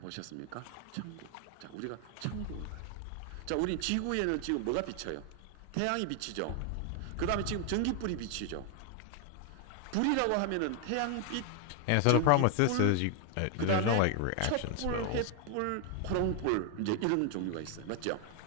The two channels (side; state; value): both; different; correlation 0.00